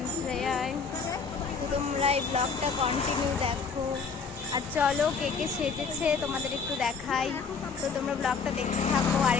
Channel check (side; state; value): right; quieter; 5.2 dB